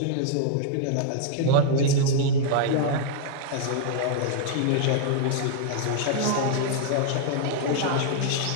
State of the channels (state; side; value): different; both; correlation -0.01